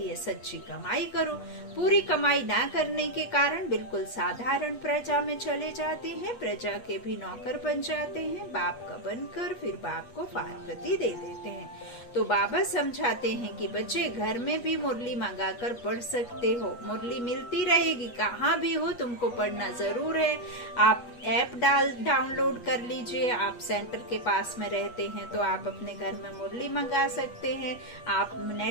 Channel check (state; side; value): late; right; 8.3 ms